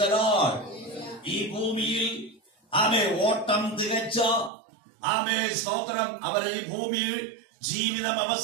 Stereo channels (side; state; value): left; drops out; at 4.5 s